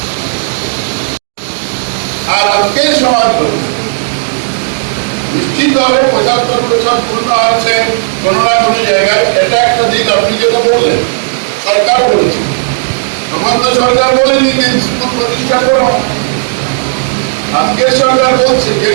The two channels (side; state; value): left; silent; digital silence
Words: আর আজকের সমাজ ব্যবস্থা নিশ্চিতভাবে 75 বছর পূর্ণ হচ্ছে কোনো না কোনো জায়গায়। এটা একটা দিক আপনি যেটা বললেন, সরকার বলেছে, তখন তো সরকার বলেনি যে স্কুল প্রতিষ্ঠা করো। আজকের সরকার বলছে, যে